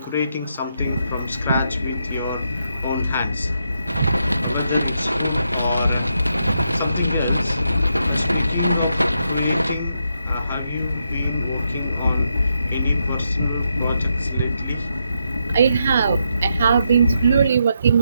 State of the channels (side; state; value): both; inverted; correlation -0.81